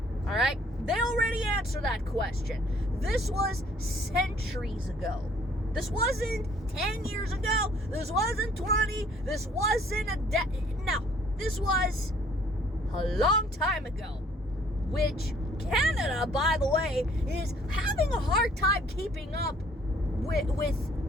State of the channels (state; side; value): normal; both; correlation 0.59